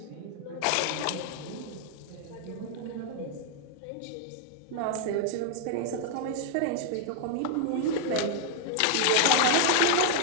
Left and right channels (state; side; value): different; both; correlation 0.00